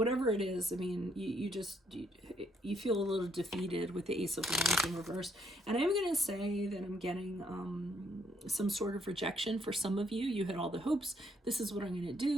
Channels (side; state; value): both; normal; correlation 0.71